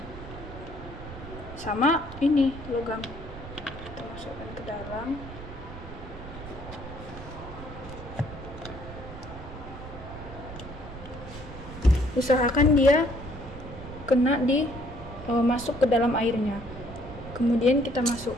sama ini logam, kita masukkan ke dalam. Usahakan dia kena masuk ke dalam airnya. Kemudian kita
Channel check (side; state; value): right; noise; rumble, 12 dB below the sound